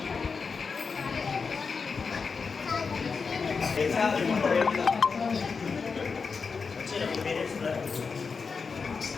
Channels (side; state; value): right; quieter; 5.1 dB